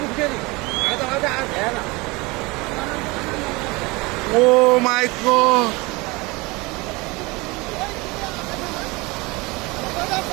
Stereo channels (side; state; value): left; quieter; 24.6 dB